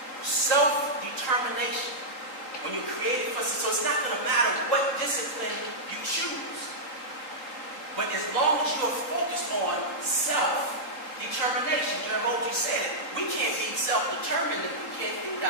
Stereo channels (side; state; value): right; late; 3.8 ms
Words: Self-determination. When you're created for, so it's not going to matter what discipline you choose. But as long as you're focused on self-determination, Jeremy said it, we can't be self-determined if we can't feed